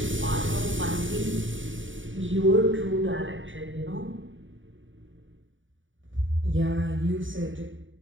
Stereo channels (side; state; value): left; late; 0.56 ms